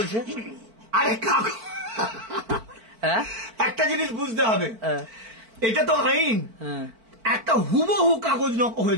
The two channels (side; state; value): left; late; 4.5 ms